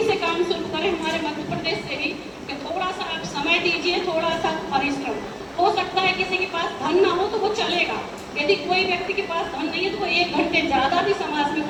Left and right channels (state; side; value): identical; both; correlation 1.00